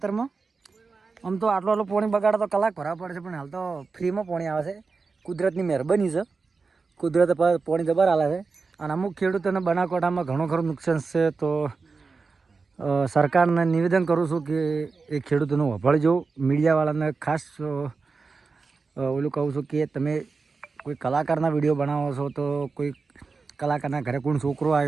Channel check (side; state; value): left; quieter; 4.5 dB